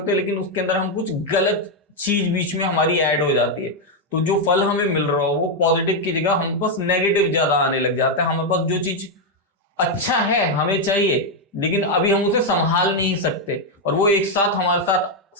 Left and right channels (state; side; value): normal; both; correlation 0.02